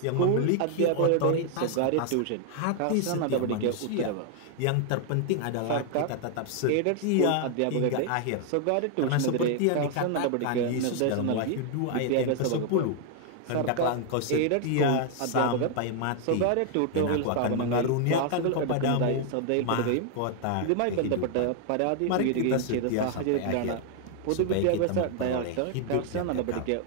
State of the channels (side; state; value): both; different; correlation 0.00